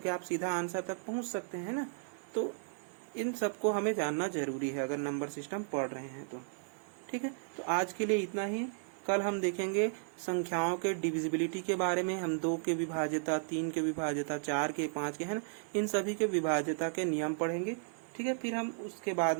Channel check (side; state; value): left; silent; digital silence